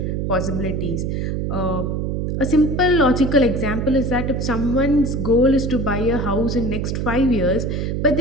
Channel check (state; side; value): noise; right; hum, 1 dB below the sound